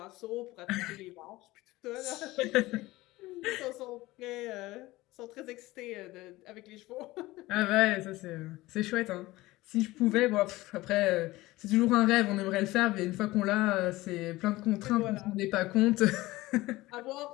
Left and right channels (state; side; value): quieter; right; 18.9 dB